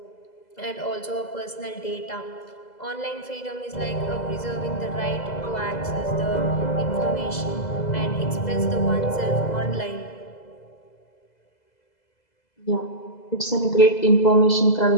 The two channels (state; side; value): late; right; 2.0 ms